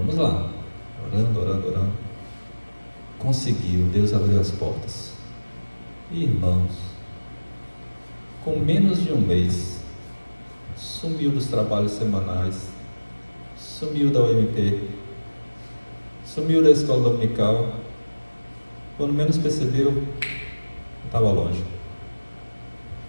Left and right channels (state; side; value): inverted; both; correlation -1.00